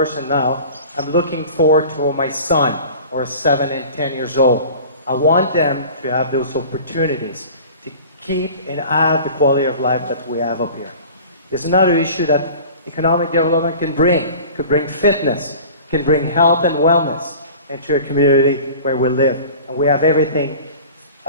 now, I'm looking forward to my son, or 7 and 10 years old. I want them to have those opportunities to keep and add the quality of life that we have up here. There's another issue that economic development can bring. It could bring fitness, can bring health and wellness into a community where we live. And we have everything.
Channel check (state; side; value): inverted; both; correlation -0.41